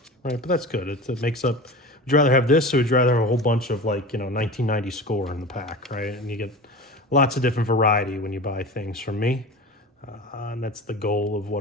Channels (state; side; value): normal; both; correlation 0.32